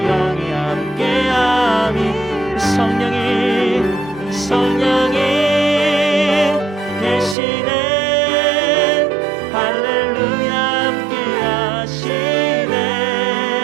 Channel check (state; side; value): drops out; left; at 7.4 s